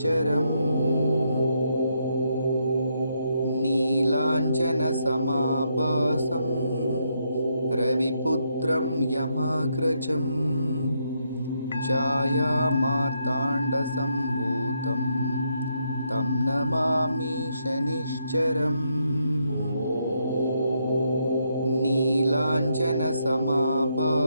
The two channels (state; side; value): inverted; both; correlation -0.78